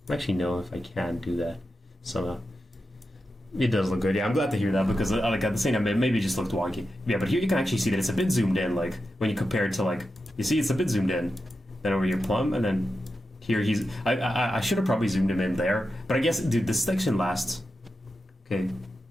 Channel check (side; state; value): both; normal; correlation 0.90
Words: I actually know if I can do that somehow. It does look good. Yeah, I'm glad to hear that because like at the same time, it maybe just looked wonky. Yeah, but here you can actually see that it's a bit zoomed in. Like when you compare it to like, you see it's a bit zoomed in. Then over your plum, and then here he's. I should have probably zoomed him in there, but I guess, dude, this section lasts. Okay.